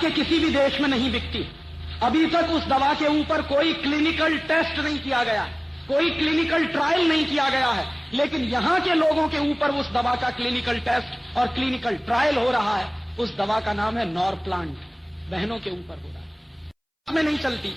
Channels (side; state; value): both; identical; correlation 1.00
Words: किसी भी देश में नहीं बिकती है। अभी तक उस दवा के ऊपर कोई क्लिनिकल टेस्ट नहीं किया गया है, कोई क्लिनिकल ट्रायल नहीं किया गया है, लेकिन यहां के लोगों के ऊपर उस दवा का क्लिनिकल टेस्ट और क्लिनिकल ट्रायल हो रहा है। उस दवा का नाम है नॉरप्लांट। बहनों के ऊपर हो रहा है, में नहीं चलती,